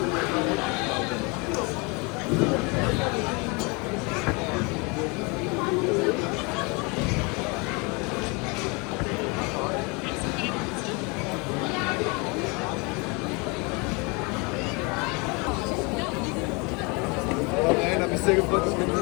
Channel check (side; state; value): right; quieter; 29.3 dB